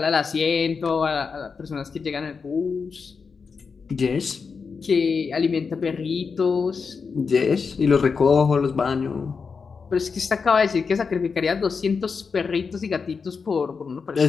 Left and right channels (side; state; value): right; quieter; 5.3 dB